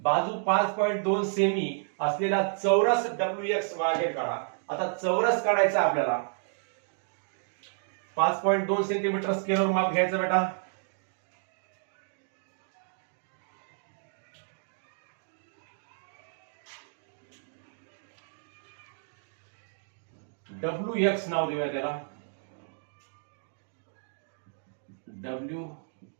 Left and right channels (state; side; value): silent; left; digital silence